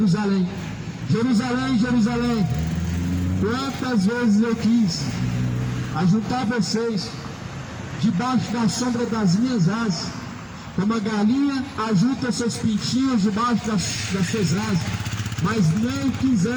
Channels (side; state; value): both; identical; correlation 1.00